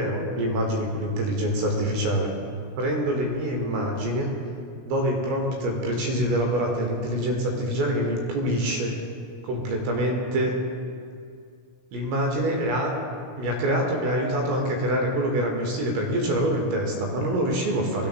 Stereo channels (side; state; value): left; late; 17 ms